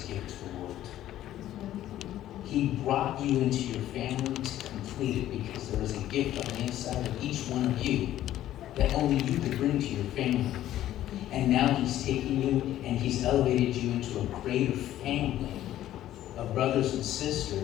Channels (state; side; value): quieter; right; 13.0 dB